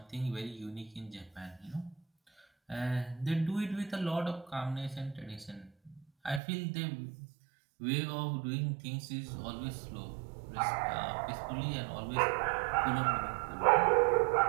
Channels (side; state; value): left; drops out; at 6.4 s